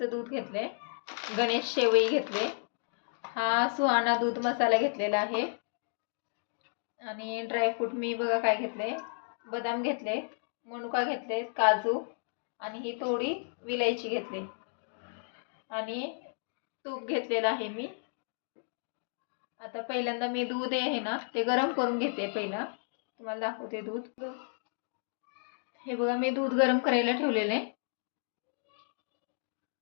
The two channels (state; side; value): silent; right; digital silence